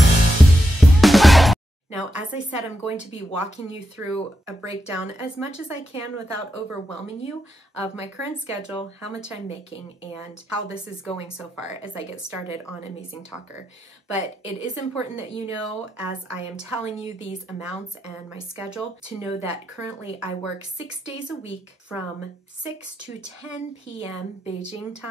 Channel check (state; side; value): normal; both; correlation 0.86